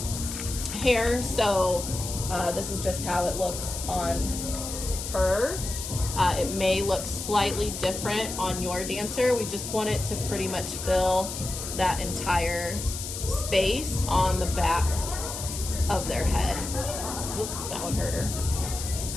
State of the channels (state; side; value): noise; left; hiss, 7 dB below the sound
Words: hair, so this is just how it looks on her. It may look slightly different on your dancer. We just want it to pretty much fill that entire space on the back of their head. Oops, that one hurt her.